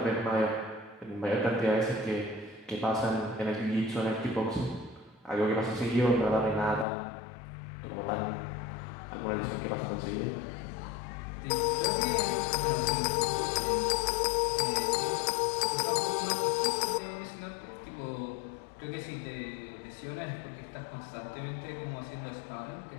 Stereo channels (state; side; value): drops out; right; at 6.9 s